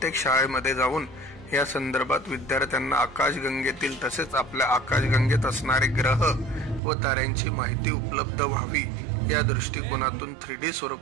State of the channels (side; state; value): left; drops out; at 6.8 s